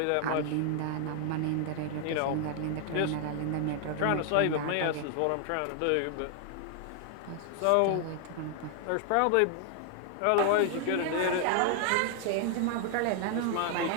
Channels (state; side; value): different; both; correlation 0.00